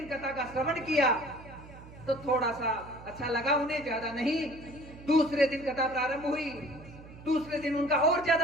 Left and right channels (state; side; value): noise; right; hum, 18 dB below the sound